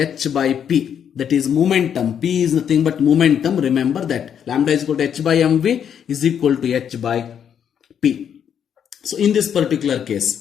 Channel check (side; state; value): right; quieter; 8.5 dB